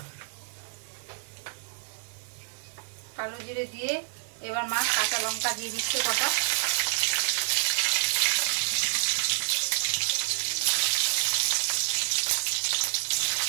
কালো জিরে দিয়ে এবার মা কাঁচা লঙ্কা দিয়ে দিচ্ছে কটা।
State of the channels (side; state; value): left; silent; 59 dB below the other